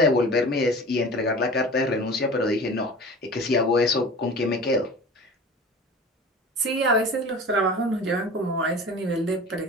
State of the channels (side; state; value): both; normal; correlation 0.38